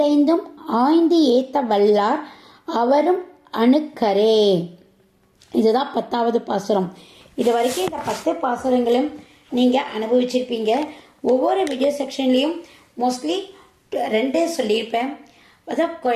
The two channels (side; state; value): both; identical; correlation 1.00